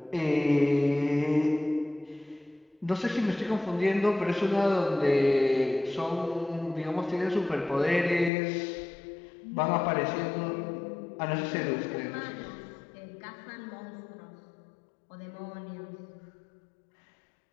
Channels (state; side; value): drops out; right; at 8.3 s